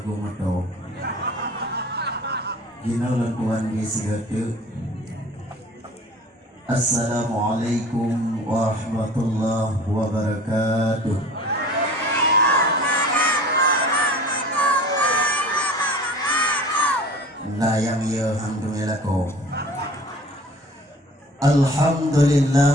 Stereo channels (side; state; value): both; normal; correlation 0.44